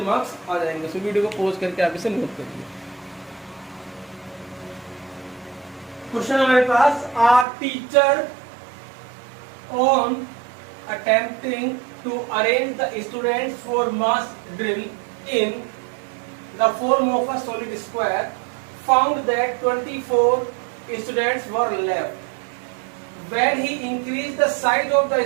मार्क्स आ जाएंगे। सो वीडियो को पॉज करके आप इसे नोट करिए। क्वेश्चन हमारे पास, our teacher on attempting to arrange the students for mass drill in the form of a solid square found that 24 students were left. When he increased the size of the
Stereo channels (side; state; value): left; drops out; at 7.5 s